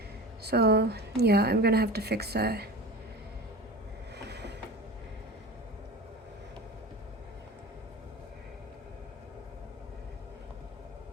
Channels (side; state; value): both; normal; correlation 0.32